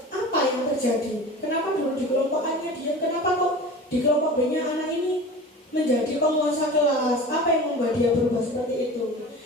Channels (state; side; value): normal; both; correlation 0.36